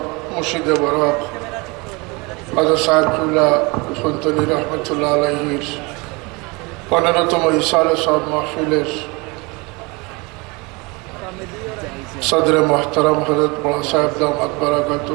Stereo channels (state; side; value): quieter; left; 26.9 dB